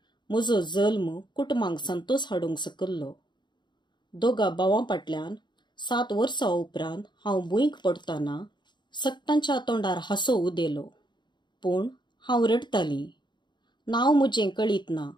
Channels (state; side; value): late; right; 0.22 ms